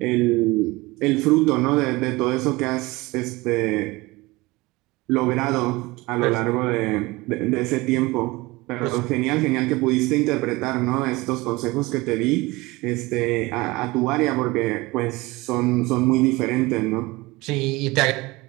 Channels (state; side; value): quieter; left; 21.9 dB